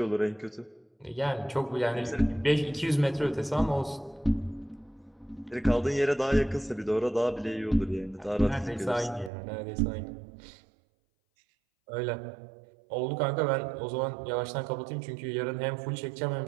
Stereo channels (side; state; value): left; drops out; at 9.3 s